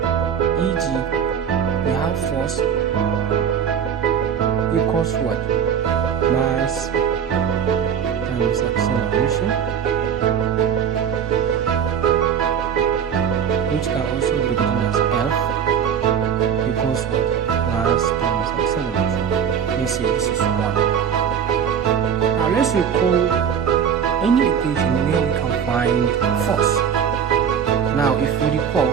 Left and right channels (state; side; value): quieter; left; 7.9 dB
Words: E.g., we have force equals what? Mass times acceleration, which can also be written as F equals what? Mass times acceleration. Let's say this is 1. Now let's recall any equation where we can find force. Now if we recall,